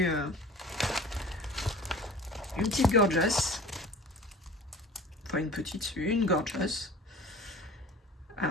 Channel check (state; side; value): normal; both; correlation 0.42